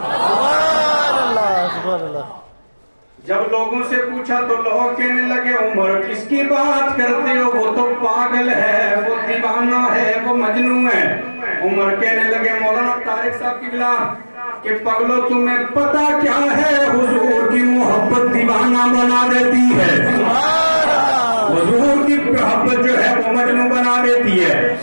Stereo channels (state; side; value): inverted; both; correlation -1.00